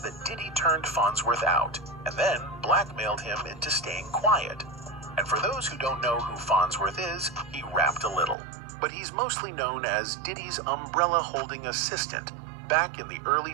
that Diddy turned Farnsworth out and then blackmailed him into staying quiet. And for those who don't know who Farnsworth is, he rapped a little. But he's mostly known as Diddy's umbrella-holding assistant back in the early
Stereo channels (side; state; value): left; drops out; at 8.3 s